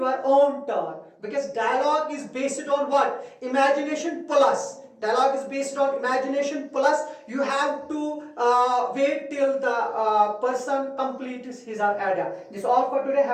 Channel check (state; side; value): identical; both; correlation 1.00